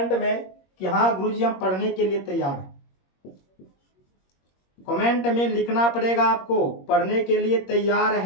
में कि हाँ गुरुजी हम पढ़ने के लिए तैयार हैं। कमेंट में लिखना पड़ेगा आपको, पढ़ने के लिए तैयार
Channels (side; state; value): right; late; 21 ms